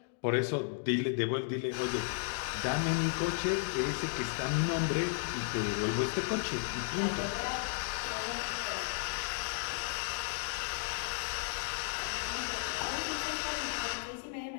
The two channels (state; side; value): silent; right; digital silence